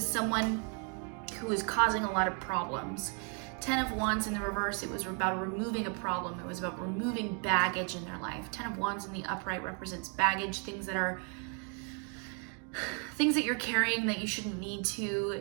someone who was causing a lot of problems. Ten of Wands in the reverse, it was about removing a problem. It was about removing baggage in their life. Ten of Wands in the upright represents baggage, things that you're carrying that you shouldn't need to.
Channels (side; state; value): left; quieter; 39.3 dB